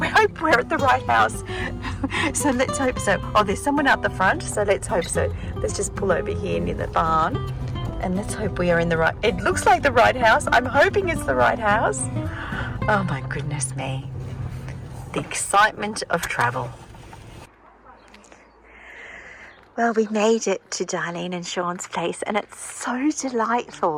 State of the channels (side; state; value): both; identical; correlation 1.00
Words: hope we're at the right house. So let's hope so. Oh, there's someone out the front, so let's hope so. Let's just pull over here near the barn and let's hope we are in the right. It looks like the right house. I'm hoping it's the right house. Oh my goodness me. The excitement of travel. Well, we made it to Darlene and Sean's place and it's so